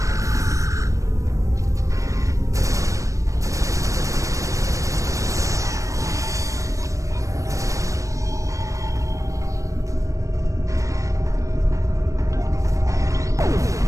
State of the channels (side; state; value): left; late; 0.16 ms